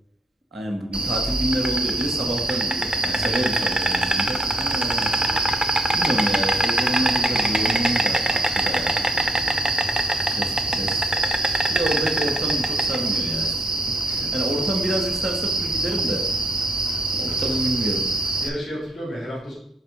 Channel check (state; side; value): normal; both; correlation 0.70